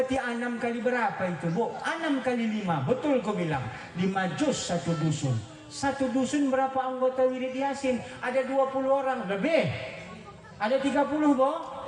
6 kali berapa itu, Bu? 6 kali 5. Betul kau bilang. 5 juz satu dusun. Satu dusun berapa anggota wirid Yasin? Ada 20 orang lebih. Ada 30, Bu?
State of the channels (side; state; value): both; identical; correlation 1.00